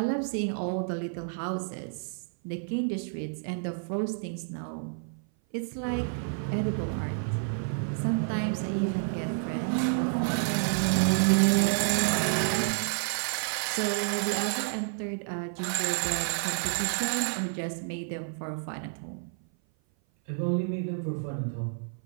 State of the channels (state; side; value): silent; left; 56 dB below the other